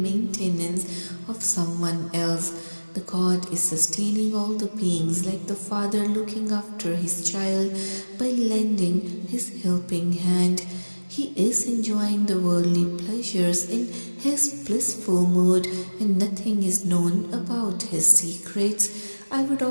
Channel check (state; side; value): inverted; both; correlation -1.00